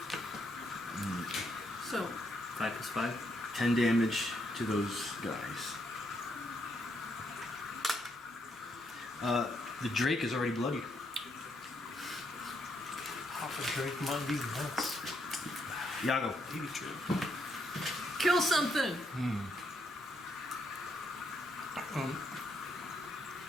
so 5 plus 5. 10 damage to those guys. The Drake is already bloody. Papa Drake might be nuts. Yago. Baby Drake. kill something.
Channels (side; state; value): both; normal; correlation 0.76